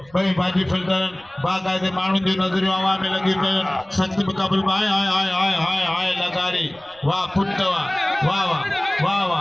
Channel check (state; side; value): noise; right; rumble, 29 dB below the sound